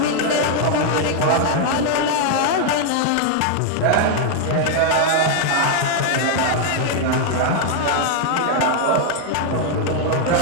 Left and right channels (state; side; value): different; both; correlation 0.00